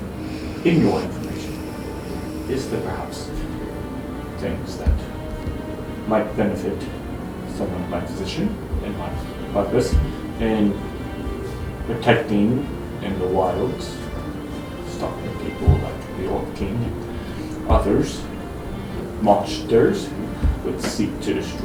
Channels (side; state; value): both; identical; correlation 1.00